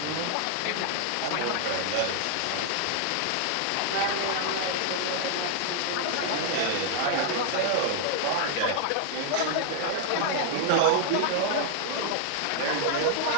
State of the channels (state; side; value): different; both; correlation 0.00